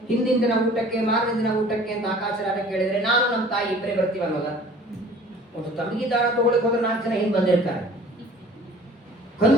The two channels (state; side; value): normal; both; correlation 0.49